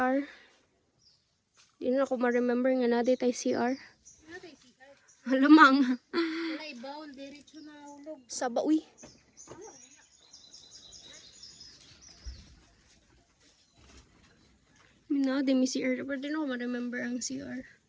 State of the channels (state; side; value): identical; both; correlation 1.00